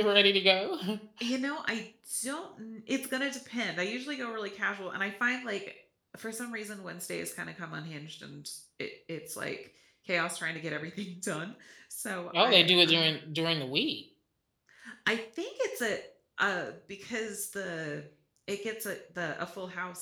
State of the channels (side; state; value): both; identical; correlation 1.00